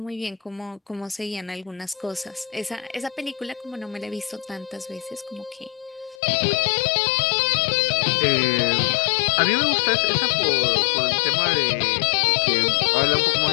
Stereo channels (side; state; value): right; drops out; at 6.2 s